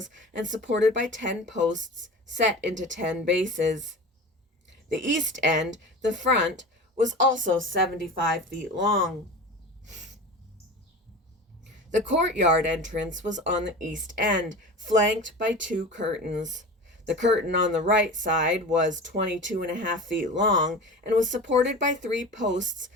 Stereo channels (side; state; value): both; normal; correlation 0.32